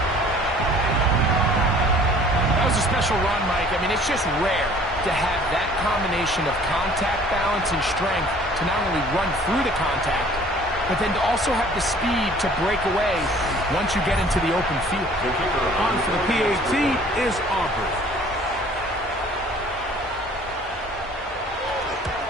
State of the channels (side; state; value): both; normal; correlation 0.52